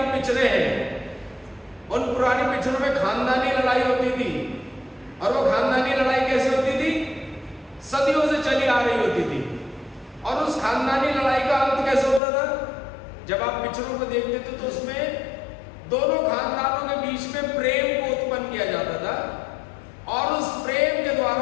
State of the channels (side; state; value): right; drops out; at 12.2 s